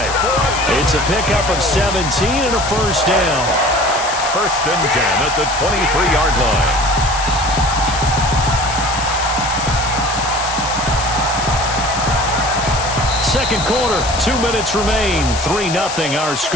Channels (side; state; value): left; noise; hiss, 6 dB below the sound